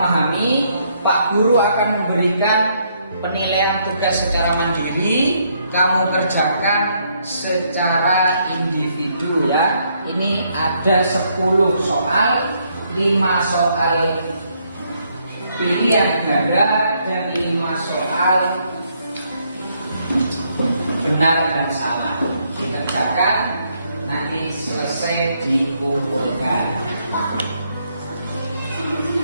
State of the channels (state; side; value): inverted; both; correlation -0.73